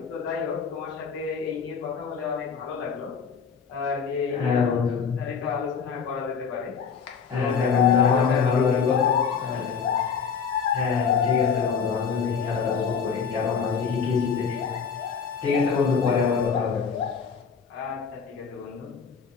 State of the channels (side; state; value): right; quieter; 6.2 dB